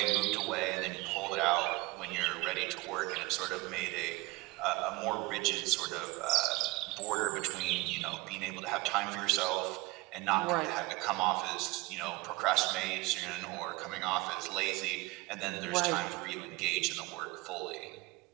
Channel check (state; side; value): quieter; left; 22.4 dB